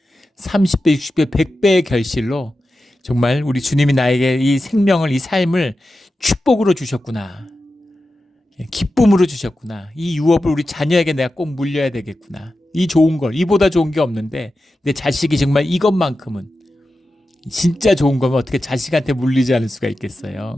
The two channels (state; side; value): normal; both; correlation 0.92